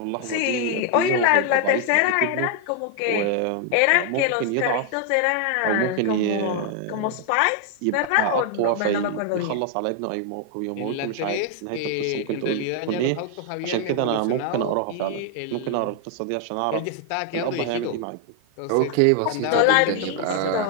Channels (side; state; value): both; different; correlation 0.00